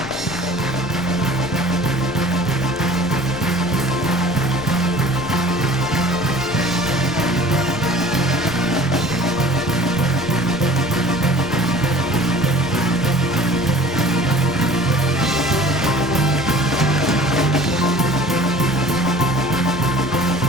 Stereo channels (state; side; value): noise; left; rumble, 20 dB below the sound